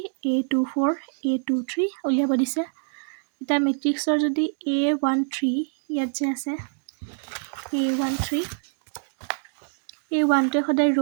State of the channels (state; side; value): silent; left; digital silence